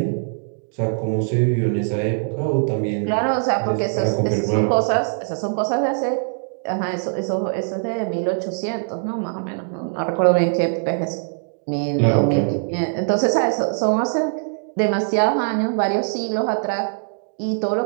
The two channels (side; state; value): left; silent; digital silence